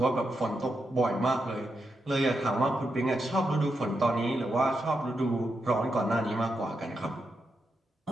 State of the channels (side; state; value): both; normal; correlation 0.85